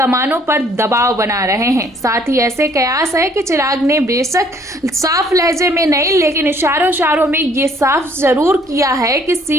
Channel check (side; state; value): both; normal; correlation 0.61